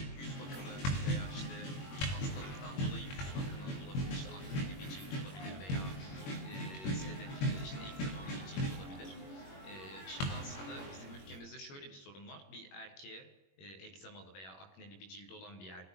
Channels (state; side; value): late; right; 21 ms